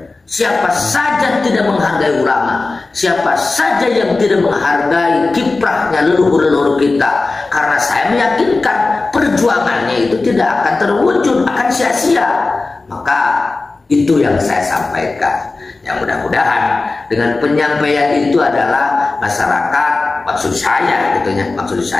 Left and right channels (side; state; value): right; quieter; 3.5 dB